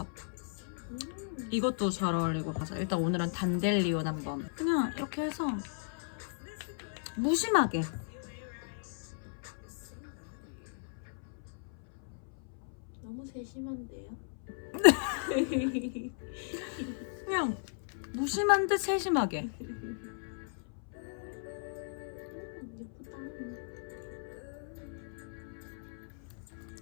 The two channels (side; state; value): right; silent; 54 dB below the other